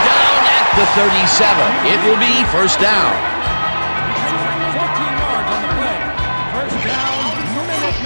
down at the 37. It will be first down. 14 yards on the play. First down,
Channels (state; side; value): inverted; both; correlation -1.00